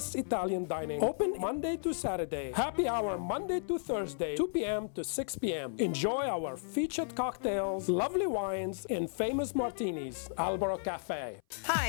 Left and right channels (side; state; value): right; silent; 55 dB below the other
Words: Italian dining. Open Monday to Saturday. Happy hour Monday to Thursday, 2 p.m. to 6 p.m. Enjoy our featured cocktails, lovely wines, and famous martinis. Albero Cafe.